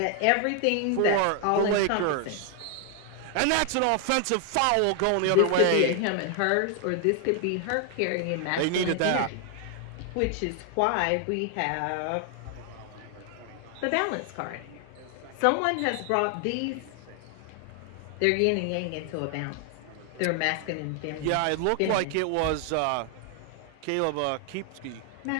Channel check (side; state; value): both; different; correlation 0.00